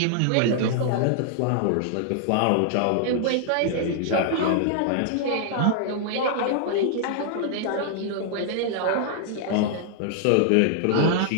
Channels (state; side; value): different; both; correlation -0.01